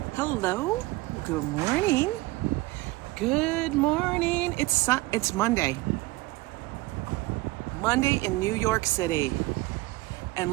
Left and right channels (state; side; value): quieter; left; 20.7 dB